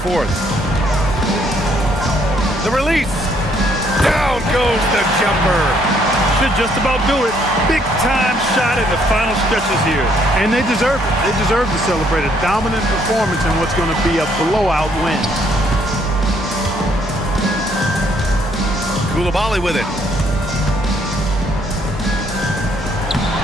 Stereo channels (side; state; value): both; normal; correlation 0.68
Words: The release. Down goes the jumper. Should just about do it. Big time shot in the final stretches here. And they deserve it. They deserve to celebrate a dominant performance in what's going to be a blowout win. Koulibaly with it.